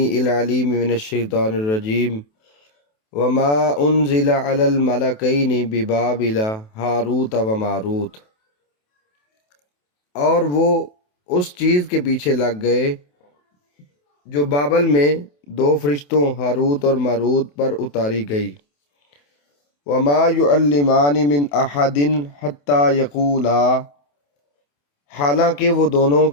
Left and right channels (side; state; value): right; late; 28 ms